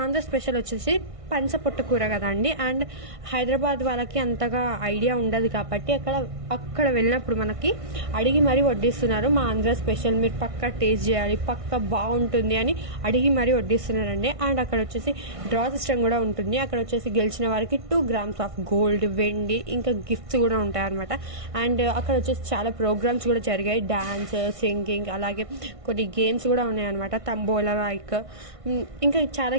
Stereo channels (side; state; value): left; late; 1.6 ms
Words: ఆంధ్ర స్పెషల్ వచ్చేసి పంచ పొట్టు కూర కదండి. అండ్ హైదరాబాద్ వాళ్ళకి అంతగా ఐడియా ఉండదు కాబట్టి అక్కడ వెళ్ళినప్పుడు మనకి అడిగి మరీ వడ్డిస్తున్నారు. మా ఆంధ్ర స్పెషల్ మీరు పక్కా టేస్ట్ చేయాలి, పక్కా బాగుంటుంది అని అడిగి మరీ వడ్డిస్తున్నారండి. అండ్ అక్కడ వచ్చేసి డ్రా సిస్టమ్ కూడా ఉంటుంది. అక్కడ వచ్చేసి గెలిచిన వారికి 2 grams ఆఫ్ గోల్డ్, వెండి, ఇంకా గిఫ్ట్స్ కూడా ఉంటాయి అనమాట. అండ్ అక్కడ వచ్చేసి చాలా ప్రోగ్రామ్స్ కూడా జరిగాయి. డాన్స్, సింగింగ్, అలాగే కొన్ని గేమ్స్ కూడా ఉన్నాయి అనమాట. తంబోలా లైక్ ఇంకా చాలా